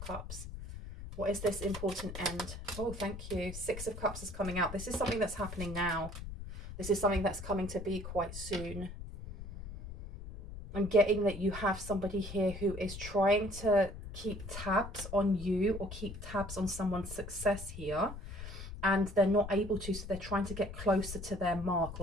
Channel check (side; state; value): left; noise; rumble, 10 dB below the sound